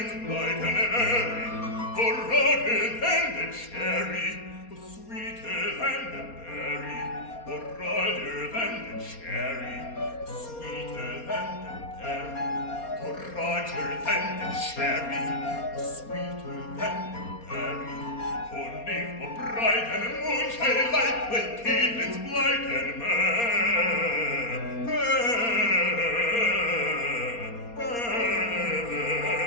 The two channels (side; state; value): right; late; 4.3 ms